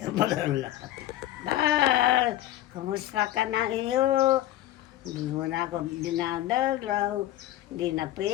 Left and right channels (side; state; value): right; quieter; 14.2 dB